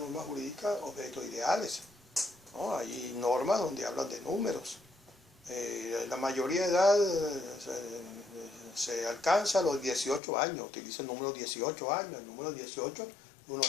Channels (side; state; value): right; drops out; at 10.2 s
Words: jurídicas objetos ideales. ¿no? Hay normas donde hablan de números. La mayoría de edad se alcanza a los 18 años, utiliza el número 18 años, el número 18 es un